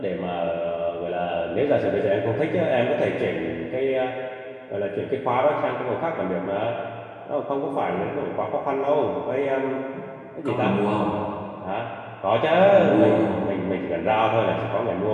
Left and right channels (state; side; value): identical; both; correlation 1.00